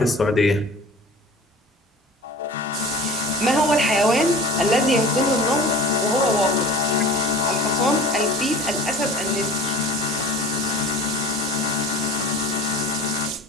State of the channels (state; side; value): normal; both; correlation 0.41